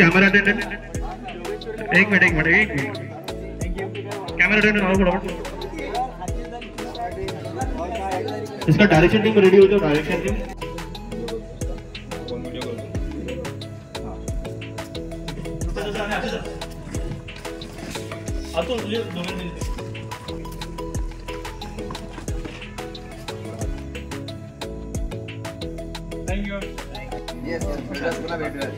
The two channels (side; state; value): both; identical; correlation 1.00